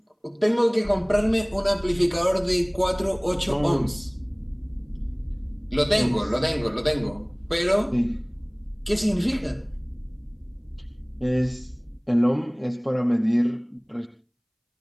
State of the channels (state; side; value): identical; both; correlation 1.00